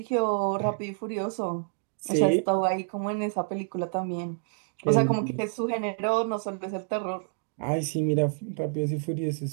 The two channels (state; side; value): silent; left; digital silence